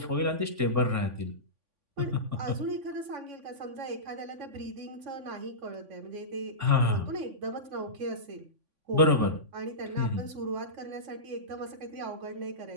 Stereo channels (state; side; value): late; left; 3.5 ms